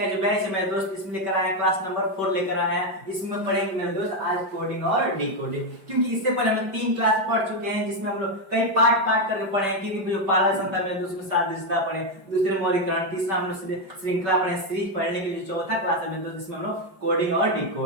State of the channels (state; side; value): late; left; 5.2 ms